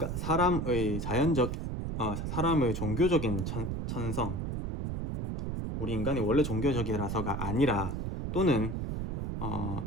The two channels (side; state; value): right; noise; rumble, 3 dB below the sound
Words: 사람의 종교적인 천성 우리 인간이 원래 종교적이라서가 아니라 또는